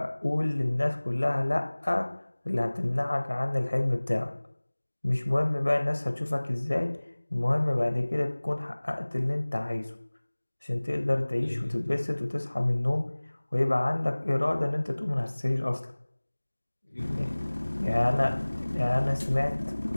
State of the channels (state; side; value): inverted; both; correlation -1.00